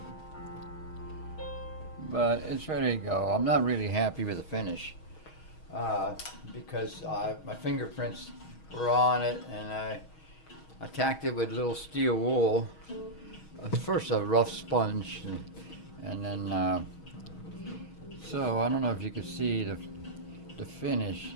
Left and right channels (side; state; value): right; late; 6.3 ms